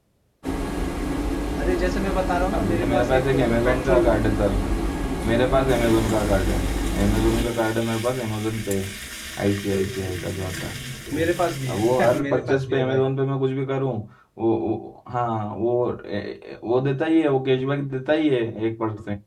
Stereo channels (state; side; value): identical; both; correlation 1.00